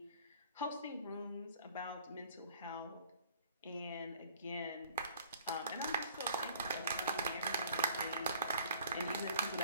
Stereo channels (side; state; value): both; inverted; correlation -0.54